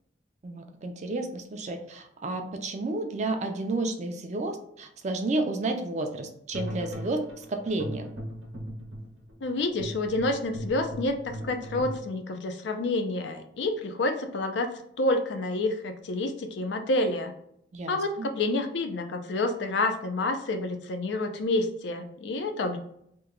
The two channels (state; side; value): normal; both; correlation 0.25